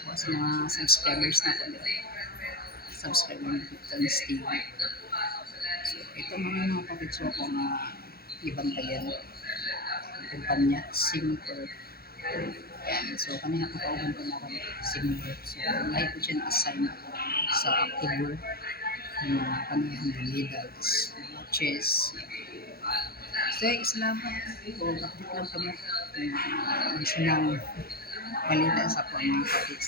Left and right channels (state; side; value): late; right; 0.44 ms